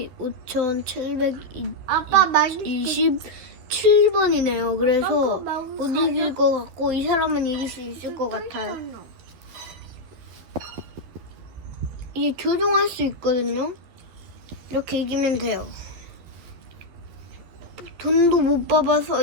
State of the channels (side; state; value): left; late; 12 ms